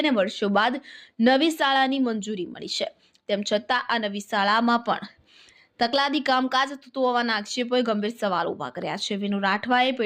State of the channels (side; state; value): both; identical; correlation 1.00